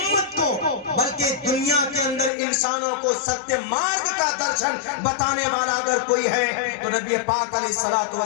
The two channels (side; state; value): right; drops out; at 2.3 s